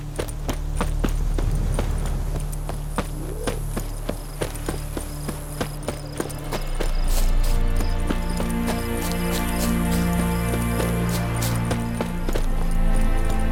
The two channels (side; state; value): both; identical; correlation 1.00